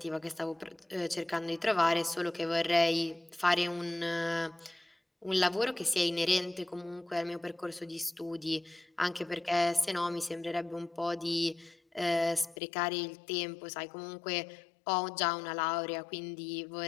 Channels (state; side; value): drops out; right; at 12.6 s